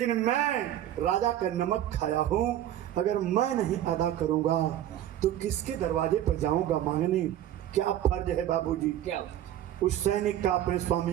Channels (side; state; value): left; quieter; 12.0 dB